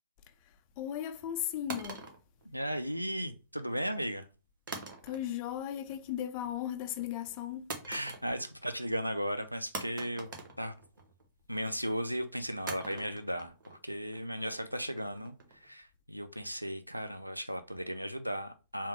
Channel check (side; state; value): both; inverted; correlation -0.72